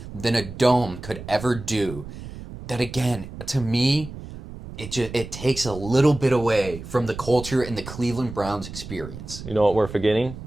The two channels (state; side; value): noise; right; rumble, 12 dB below the sound